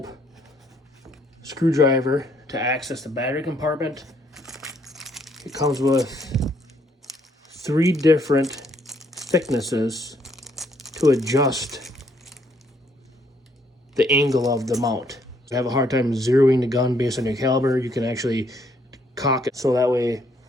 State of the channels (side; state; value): both; normal; correlation 0.69